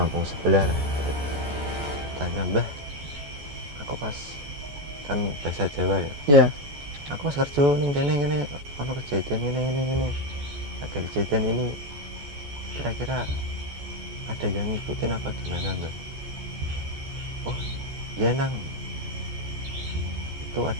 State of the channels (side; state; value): left; late; 14 ms